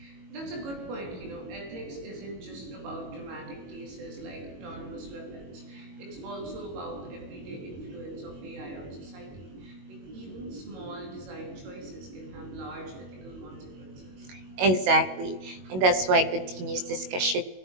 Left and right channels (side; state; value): left; late; 22 ms